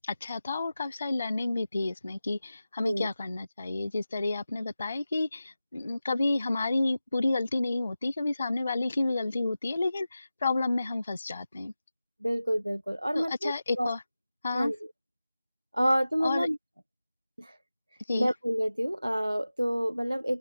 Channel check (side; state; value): both; inverted; correlation -0.95